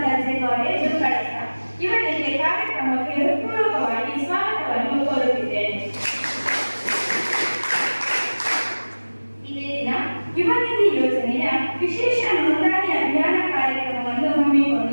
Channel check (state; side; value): inverted; both; correlation -1.00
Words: ದರ್ಜೆ ಕಾಲೇಜು ಕಳಸ, ಇವರಿಗೆ ಕಾರ್ಯಕ್ರಮಕ್ಕೆ ಹೃತ್ಪೂರ್ವಕವಾಗಿ ಸ್ವಾಗತವನ್ನು ಕೋರುತ್ತಿದ್ದೇನೆ. ಇದೇ ದಿನ ಯುವ ನಿಧಿ ಯೋಜನೆಯ ವಿಶೇಷ ನೋಂದಣಿ ಅಭಿಯಾನ ಕಾರ್ಯಕ್ರಮವನ್ನು